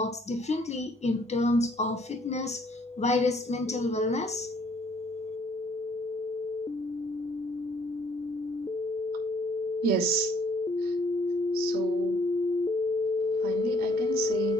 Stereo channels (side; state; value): both; normal; correlation 0.62